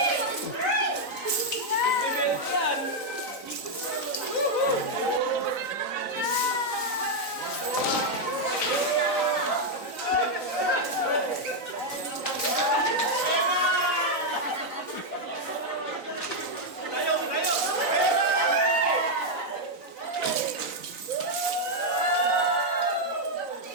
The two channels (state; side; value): late; left; 3.9 ms